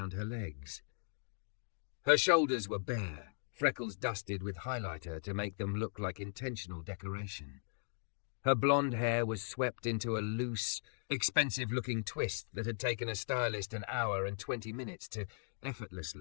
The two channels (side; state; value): right; silent; digital silence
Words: her legs. Her shoulders were bare, freckles dusted with highlighter to make them look like intentional decoration. Her blonde hair was swept into a loose, expensive-looking twist that had taken a stylist an hour and 20 minutes to